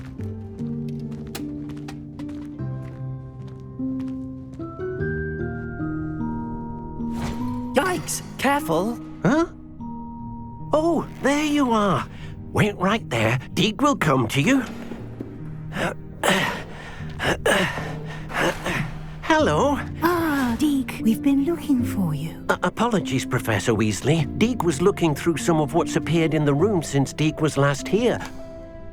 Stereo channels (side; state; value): both; identical; correlation 1.00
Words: Careful! Huh? Oh, there you are. Wait right there. Deek will come to you. Hello. Ah, Deek, we've been looking for you. Apologies, Professor Weasley. Deek was looking through some of what's appeared in the room since Deek was last here.